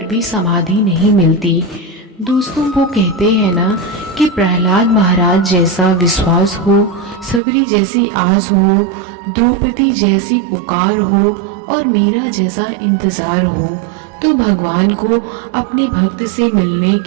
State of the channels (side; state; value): left; drops out; at 7.4 s